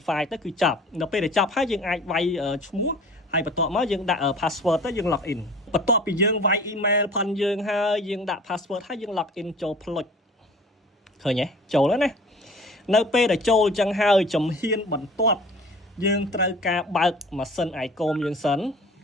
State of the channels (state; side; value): normal; both; correlation 0.45